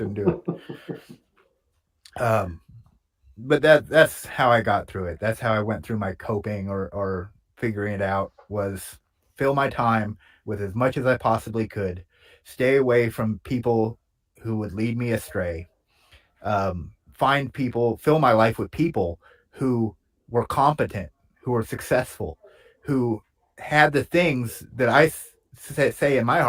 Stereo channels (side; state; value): both; identical; correlation 1.00